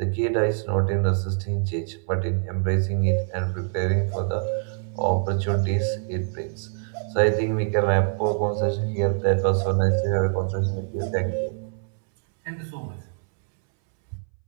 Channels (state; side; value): silent; left; 62 dB below the other